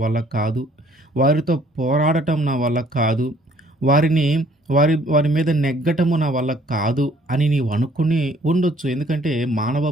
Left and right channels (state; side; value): normal; both; correlation 0.59